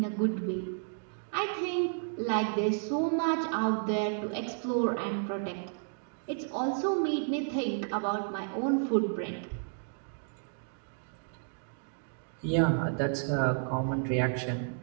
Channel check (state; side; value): silent; left; digital silence